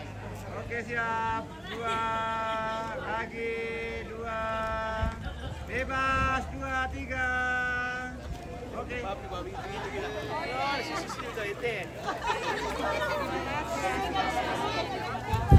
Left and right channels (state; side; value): identical; both; correlation 1.00